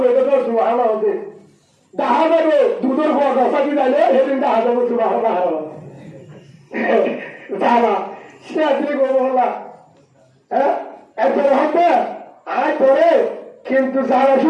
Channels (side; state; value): both; identical; correlation 1.00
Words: তো সুবহানাল্লাহ হতে দেখা যাবে দুধের পর রসাদি যাইলে সেদিন দেখা যাবে সুবাহ যাবা সে আসলে করবো হল্লা হ্যাঁ একজন হবে আয় করে কিন্তু যারা